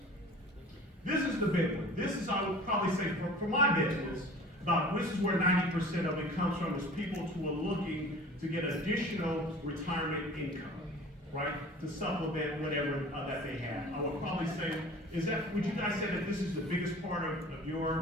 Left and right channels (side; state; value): both; normal; correlation 0.43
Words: This is the big one. This is, I would probably say, for my business, this is where 90% of it comes from, is people who are looking to get additional retirement income, right? To supplement whatever that they have. I would probably say, would you guys say that this is the biggest part of